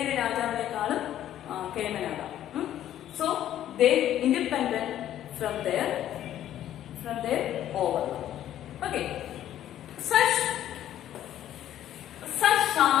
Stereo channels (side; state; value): right; quieter; 11.8 dB